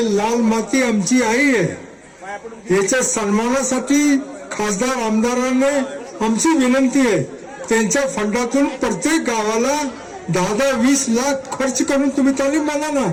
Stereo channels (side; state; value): both; identical; correlation 1.00